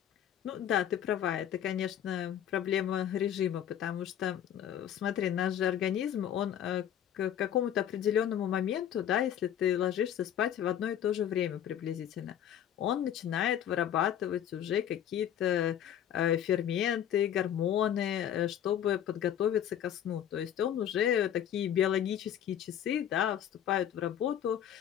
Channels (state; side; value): quieter; right; 10.0 dB